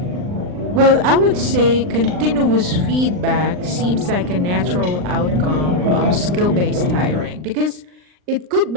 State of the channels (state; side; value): late; left; 39 ms